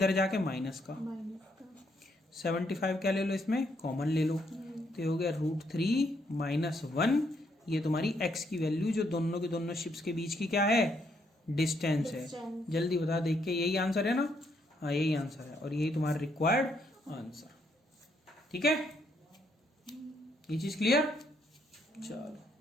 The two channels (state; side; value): normal; both; correlation 0.74